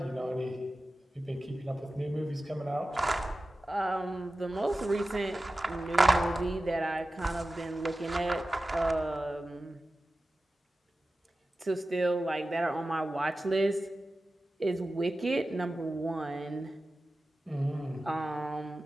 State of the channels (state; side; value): normal; both; correlation 0.95